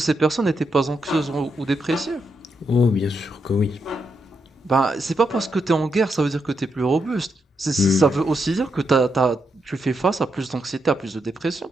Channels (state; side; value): normal; both; correlation 0.82